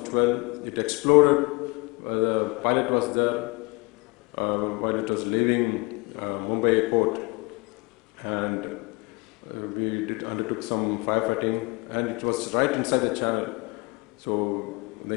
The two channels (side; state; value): right; quieter; 27.4 dB